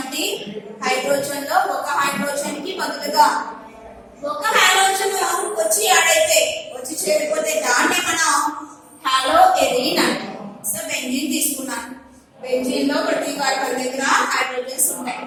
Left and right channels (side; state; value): both; identical; correlation 1.00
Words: హైడ్రోజన్ లో ఒక హైడ్రోజన్ కి బదులుగా ఒక హైడ్రోజన్ వచ్చి ఆడైతే వచ్చి చేరిపోతే దాన్ని మనం హాలో ఎరీన్ అంటాం. సో బెంజీన్ తీసుకున్నాను. బెంజీన్ లో ప్రతి కార్బన్ దగ్గర హైడ్రోజన్స్ ఉంటాయి.